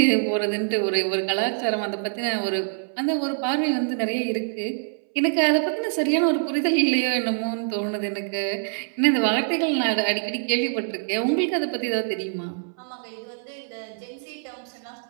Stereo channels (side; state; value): left; silent; 62 dB below the other